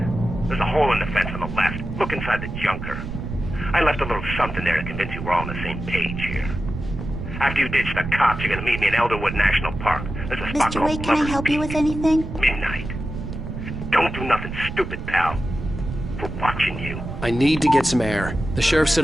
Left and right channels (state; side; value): noise; right; rumble, 7 dB below the sound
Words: There's a hole in the fence on the left. Look inside the junker. I left a little something there to convince you we're all on the same page here. After you ditch the cops, you're gonna meet me in Elderwood National Park. There's a spot Mr. called Wake, can I Lover's help you Peak. with anything? Midnight. Don't do nothing stupid, pal. We're watching you. I need to get some air. The sheriff